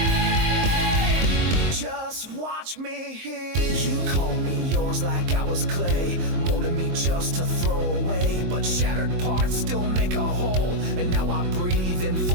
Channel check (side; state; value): left; late; 23 ms